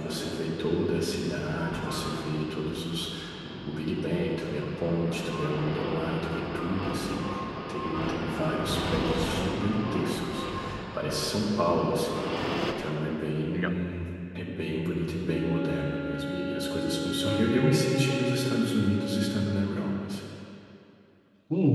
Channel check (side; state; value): both; identical; correlation 1.00